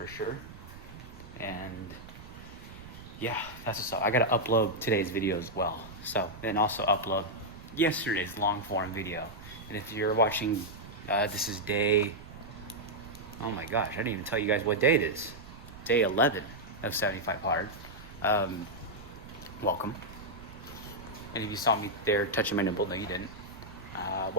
sure, and yeah, that's what's up. I gotta upload today's video as well, so, and also upload yesterday's long form video. And if you're watching, this is day, oh my gosh, I didn't even tell you guys what day it is. Day 11 of 75 hard. Welcome. And if you saw me there touching my nipple, no you didn't.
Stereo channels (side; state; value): right; noise; rumble, 16 dB below the sound